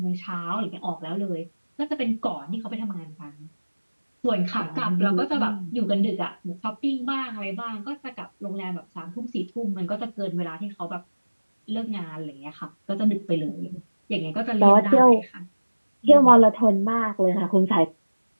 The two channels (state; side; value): inverted; both; correlation -1.00